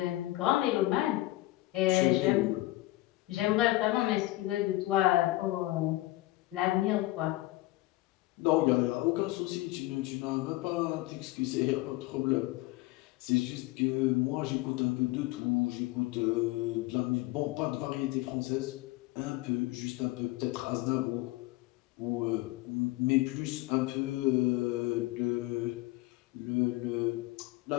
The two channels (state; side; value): quieter; right; 18.6 dB